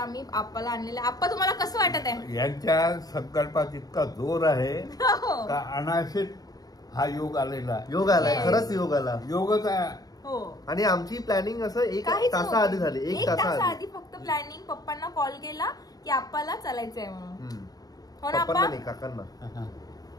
आप्पाला आणलेलं. आप्पा, तुम्हाला कसं वाटत आहे? यांच्या संकल्पात इतका जोर आहे का अनाशित हा योग आलेला. योग आलाय, खरंच योग आला, योगच आहे. हो. आणि आमची प्लॅनिंग असं एक तासाआधी झाली. एक तासाआधी फक्त प्लॅनिंग. पप्पांना कॉल केला की आप्पाला चालायचंय म्हणून. हो ना पप्पांना नाही, काकांना.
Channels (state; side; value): late; right; 0.18 ms